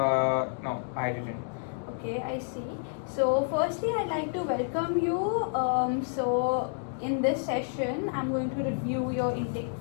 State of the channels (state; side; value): silent; right; digital silence